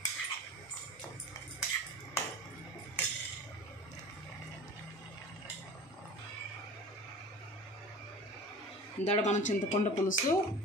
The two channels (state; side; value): normal; both; correlation 0.38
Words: ఇందాక మనం చింతపండు పులుసు